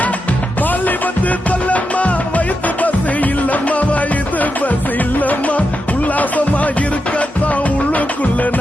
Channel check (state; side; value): normal; both; correlation 0.87